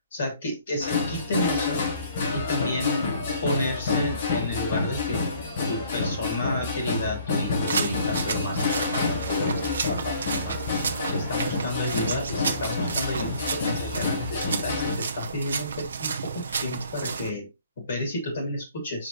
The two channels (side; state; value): both; inverted; correlation -0.57